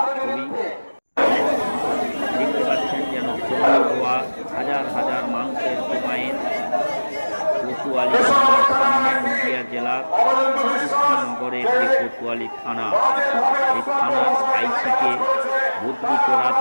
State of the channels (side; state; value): both; inverted; correlation -1.00